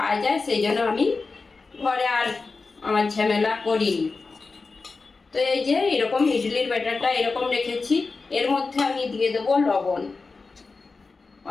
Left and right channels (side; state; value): right; quieter; 4.1 dB